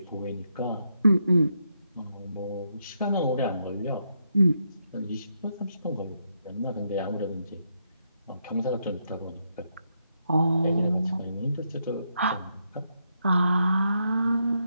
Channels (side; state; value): both; inverted; correlation -0.80